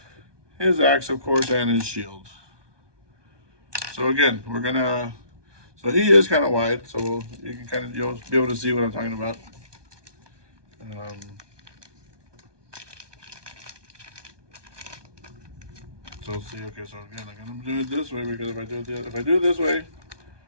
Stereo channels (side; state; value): left; late; 1.2 ms